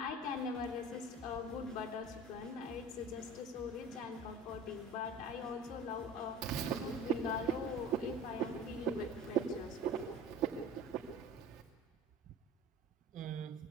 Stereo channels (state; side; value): normal; both; correlation 0.39